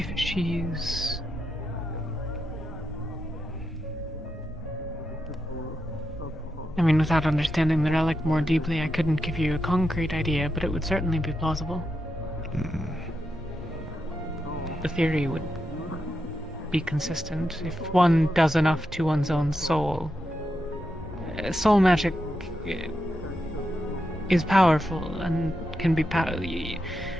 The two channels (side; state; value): both; normal; correlation 0.86